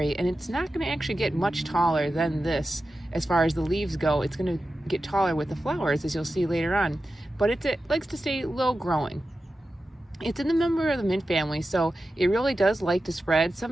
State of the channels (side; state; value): both; normal; correlation 0.92